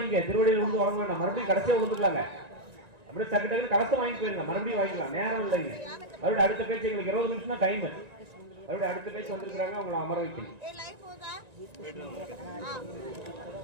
திருவடியில் வந்து வாங்க வேண்டாம், மறுபடியும் கடைசியா வந்துக்கலாங்க. அப்படியே டக்கு டக்கு கலசம் வாங்கி போயிருங்க, மறுபடியும் வாங்கிக்கலாம், நேரம் இல்லைங்க. மறுபடியும் அடுத்த பேச்சு எங்களுக்கு 20 நிமிஷம் தான் டைம். மறுபடியும் அடுத்த பேச்சு வந்திருக்கிறாங்க, அவங்களை அமர வைக்கணும்.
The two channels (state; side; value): late; left; 1.9 ms